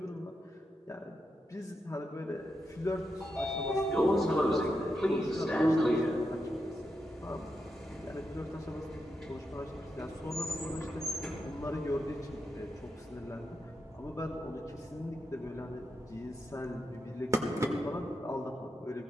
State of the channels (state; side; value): normal; both; correlation 0.86